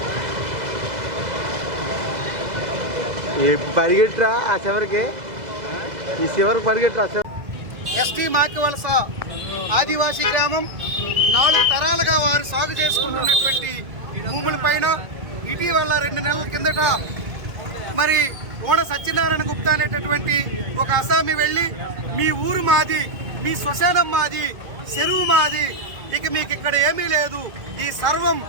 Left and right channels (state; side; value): late; left; 2.1 ms